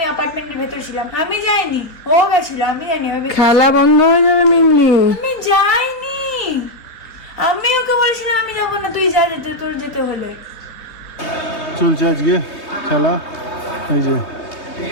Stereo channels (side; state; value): right; late; 3.5 ms